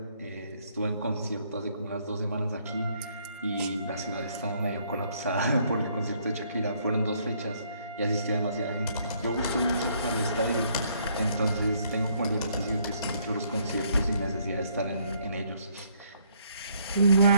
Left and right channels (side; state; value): both; inverted; correlation -0.67